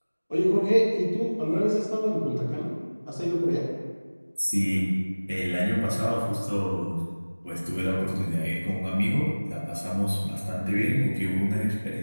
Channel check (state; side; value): inverted; both; correlation -1.00